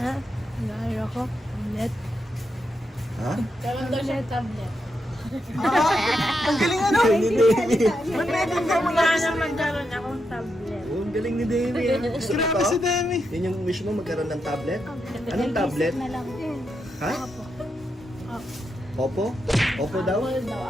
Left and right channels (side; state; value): both; normal; correlation 0.84